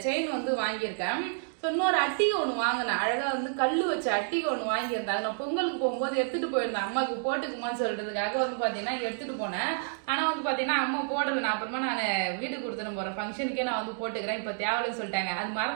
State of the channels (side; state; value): left; silent; digital silence